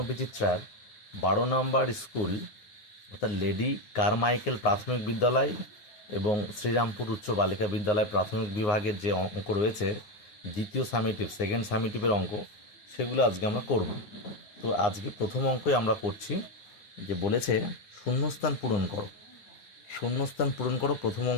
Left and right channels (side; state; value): right; late; 9.6 ms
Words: 12 নম্বর স্কুল অর্থাৎ লেডি কারমাইকেল প্রাথমিক বিদ্যালয় এবং শ্রীরামপুর উচ্চ বালিকা বিদ্যালয় প্রাথমিক বিভাগের যে অঙ্ক রয়েছে দ্বিতীয় সামেটিভ সেকেন্ড সামেটিভের অঙ্ক সেগুলো আজকে আমরা করব। তো আজকে প্রথম অঙ্কই আমরা করছি, যে বলেছে শূন্যস্থান পূরণ করো। শূন্যস্থান পূরণ করো। প্রথম